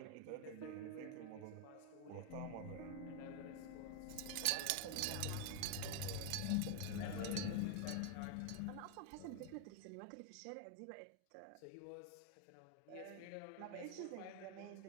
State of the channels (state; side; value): different; both; correlation 0.01